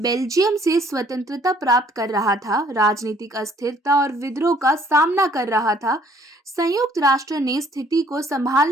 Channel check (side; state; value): both; normal; correlation 0.61